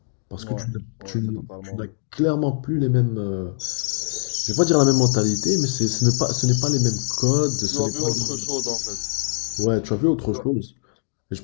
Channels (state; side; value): silent; right; digital silence